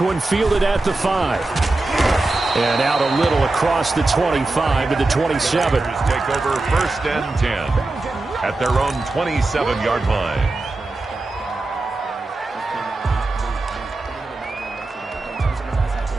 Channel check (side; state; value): left; quieter; 3.1 dB